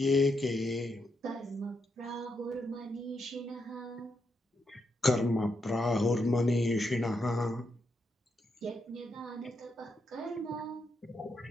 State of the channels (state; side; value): normal; both; correlation 0.81